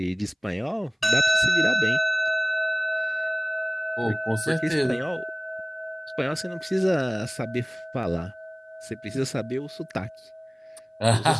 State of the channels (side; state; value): both; identical; correlation 1.00